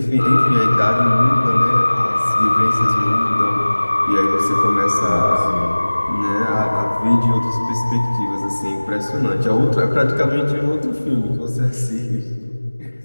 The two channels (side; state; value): both; inverted; correlation -1.00